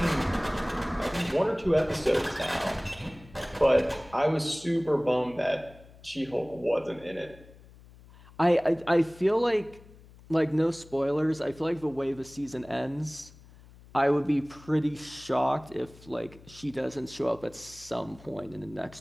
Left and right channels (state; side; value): noise; left; hum, 22 dB below the sound